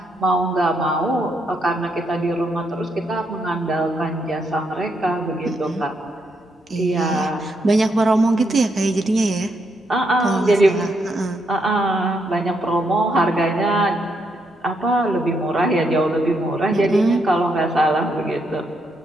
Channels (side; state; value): both; normal; correlation 0.78